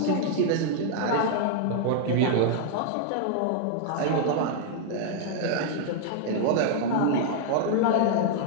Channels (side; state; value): both; different; correlation -0.01